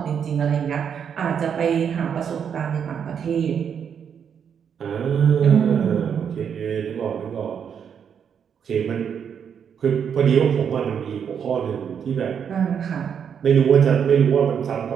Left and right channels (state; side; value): quieter; left; 7.6 dB